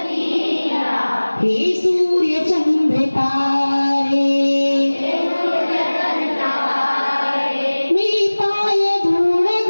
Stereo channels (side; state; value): both; inverted; correlation -1.00